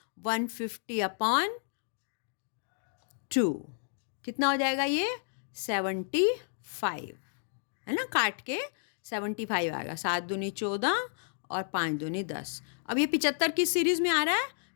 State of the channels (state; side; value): silent; right; digital silence